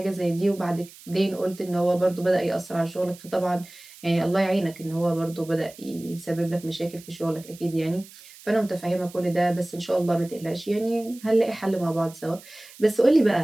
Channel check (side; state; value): right; noise; hiss, 20 dB below the sound